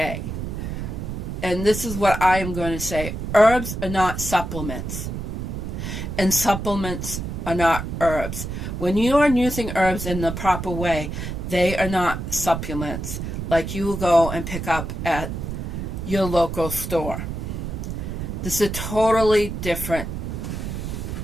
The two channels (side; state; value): right; noise; rumble, 5 dB below the sound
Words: And this is what I am going to say. Herbs are not supplements. And supplements are not herbs. When you are using herbs in the proper way, they are not supplements like you will go and pick up at your local store. This is a totally different